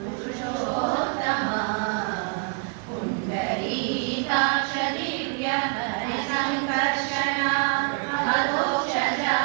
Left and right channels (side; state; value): left; quieter; 38.7 dB